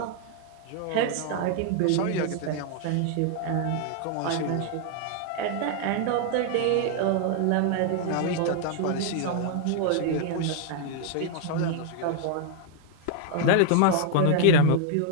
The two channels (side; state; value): both; different; correlation 0.00